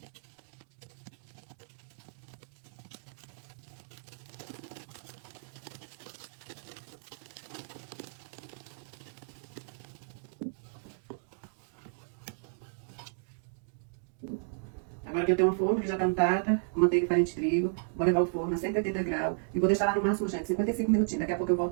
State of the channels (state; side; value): silent; left; digital silence